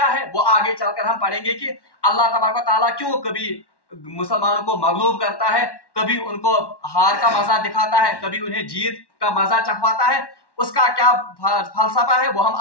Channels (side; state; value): right; late; 1.1 ms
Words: ہے وہ آگے چل کر ہم پڑھیں گے کہ اللہ تبارک و تعالیٰ کیوں کبھی مسلمانوں کو مغلوب کرتا ہے, کبھی ان کو ہار کا مزہ دکھاتا ہے, کبھی انہیں جیت کا مزہ چکھواتا ہے. اس کا کیا فلسفہ ہے وہ ہم